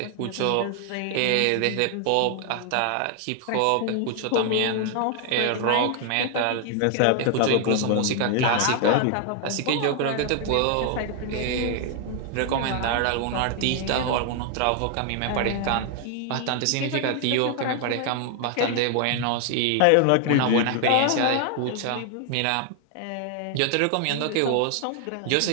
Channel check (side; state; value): both; different; correlation 0.00